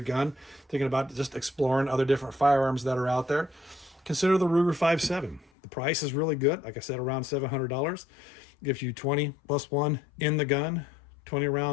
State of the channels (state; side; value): drops out; right; at 5.5 s